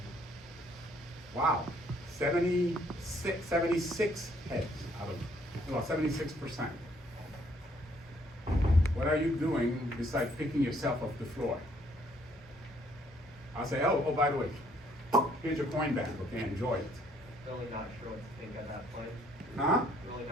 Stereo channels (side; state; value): both; normal; correlation 0.65